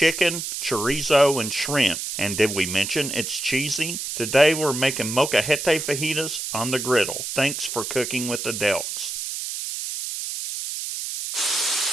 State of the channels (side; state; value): right; noise; hiss, 5 dB below the sound